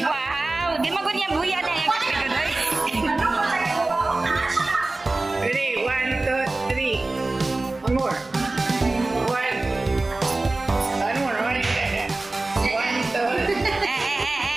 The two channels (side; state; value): left; quieter; 3.1 dB